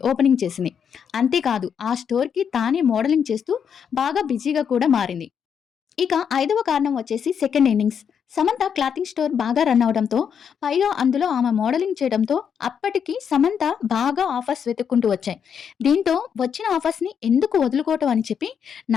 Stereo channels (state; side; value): quieter; right; 7.5 dB